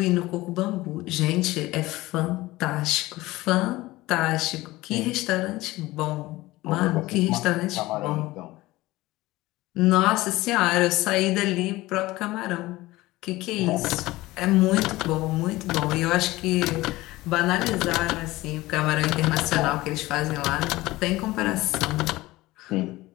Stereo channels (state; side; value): quieter; right; 18.9 dB